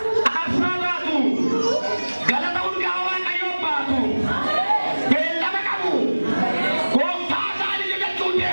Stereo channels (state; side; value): inverted; both; correlation -1.00